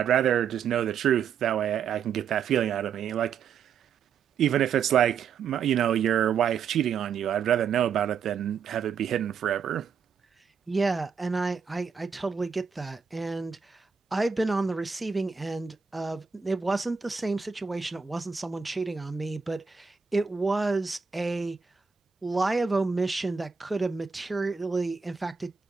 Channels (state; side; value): quieter; left; 6.4 dB